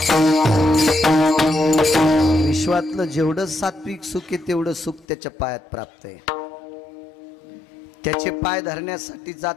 काय सांगू विश्वातलं जेवढं सात्विक सुख आहे तेवढं सुख त्याच्या पायात प्राप्त आहे. त्याचे पाय धरण्यासाठी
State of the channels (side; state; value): right; drops out; at 5.1 s